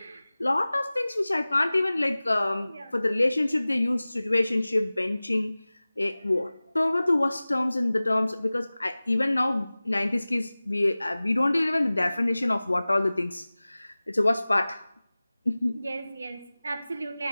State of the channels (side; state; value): both; inverted; correlation -0.98